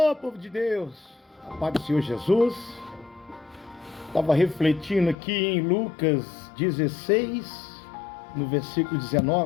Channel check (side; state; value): right; drops out; at 5.2 s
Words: povo de Deus, a paz do Senhor Jesus. Estava refletindo aqui em Lucas 16, no versículo